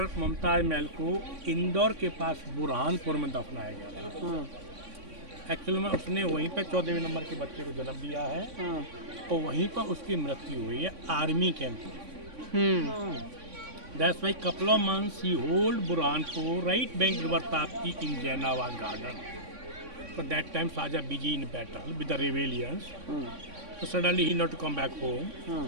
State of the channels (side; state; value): left; late; 3.6 ms